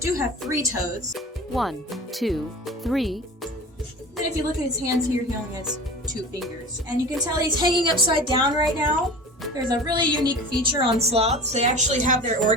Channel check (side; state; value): both; normal; correlation 0.36